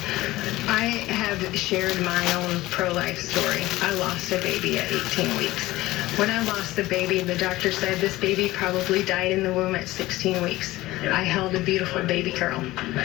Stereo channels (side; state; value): right; quieter; 17.8 dB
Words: I have shared my own pro-life story. I lost a baby at 18 weeks. When I lost the baby, the doctor said this baby probably died in the womb at 16 weeks. I held a beautiful baby girl.